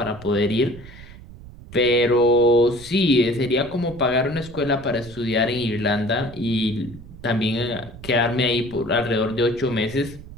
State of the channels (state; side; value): noise; right; rumble, 17 dB below the sound